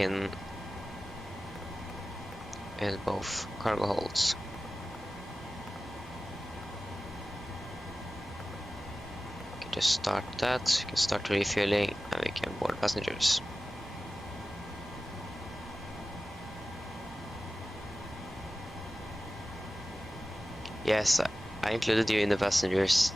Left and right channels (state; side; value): normal; both; correlation 0.96